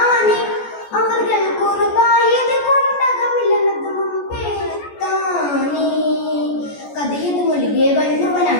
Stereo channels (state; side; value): late; right; 14 ms